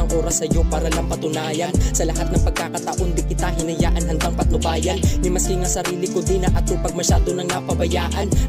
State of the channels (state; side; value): identical; both; correlation 1.00